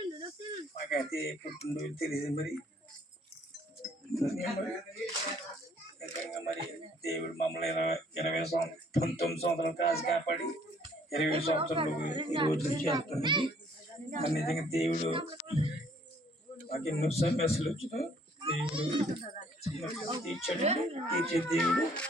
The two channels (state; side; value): normal; both; correlation 0.61